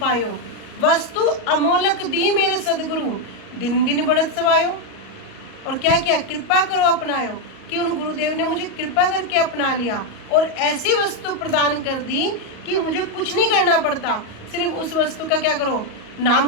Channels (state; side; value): late; right; 38 ms